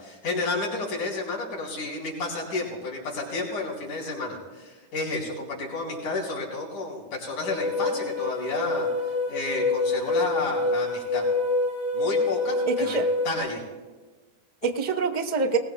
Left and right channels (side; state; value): right; late; 10 ms